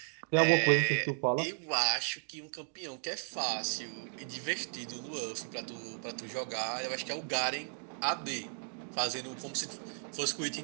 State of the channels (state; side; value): silent; left; 55 dB below the other